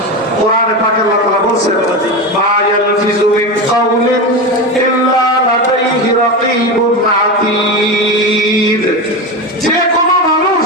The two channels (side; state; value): both; normal; correlation 0.20